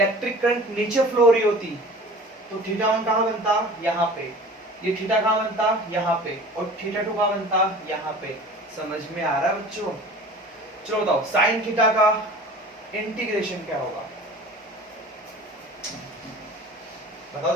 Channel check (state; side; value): normal; both; correlation 0.42